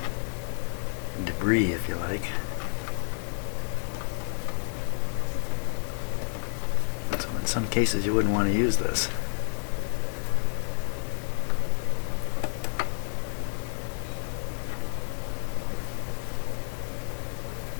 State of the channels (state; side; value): silent; right; 56 dB below the other